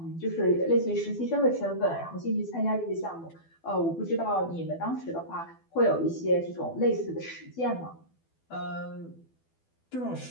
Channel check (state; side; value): late; right; 12 ms